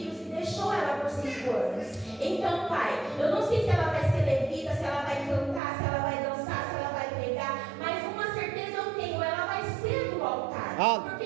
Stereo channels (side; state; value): left; drops out; at 5.6 s